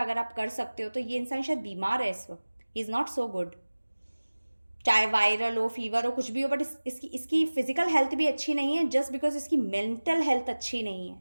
अगर आप कर सकते हो तो। ये इंसान शायद बीमार है इस वक्त, he is not so good, चाहे वायरल हो, फीवर हो, कुछ भी हो, बट इसकी फिजिकल हेल्थ भी अच्छी नहीं है जस्ट बिकॉज इसकी मेंटल हेल्थ अच्छी नहीं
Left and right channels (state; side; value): inverted; both; correlation -1.00